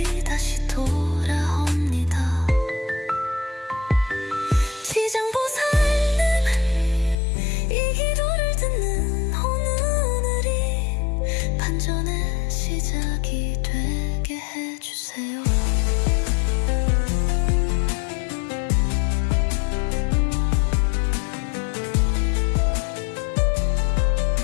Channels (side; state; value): right; drops out; at 7.2 s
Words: 다시 돌아옵니다. 지장보살님, 이 기도를 듣는 오늘이 반전의 시작이 되게 해주세요.